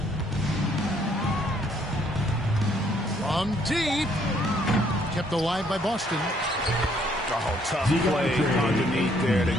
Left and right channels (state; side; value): normal; both; correlation 0.66